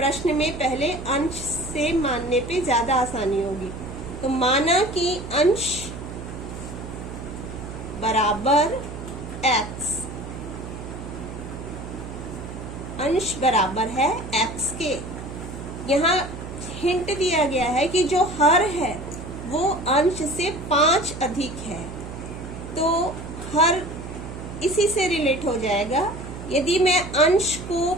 में पहले अंश से मानने पे ज्यादा आसानी होगी। तो माना कि अंश बराबर x, अंश बराबर है x के। यहाँ हिंट दिया गया है कि जो हर है वो अंश से 5 अधिक है, तो हर इसी से रिलेट हो जाएगा। यदि मैं अंश को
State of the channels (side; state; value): right; noise; hum, 10 dB below the sound